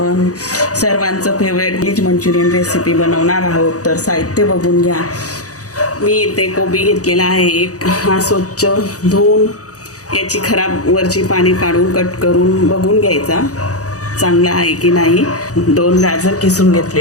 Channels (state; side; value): late; right; 0.66 ms